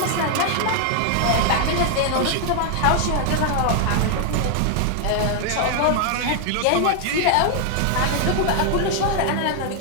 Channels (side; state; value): both; different; correlation 0.00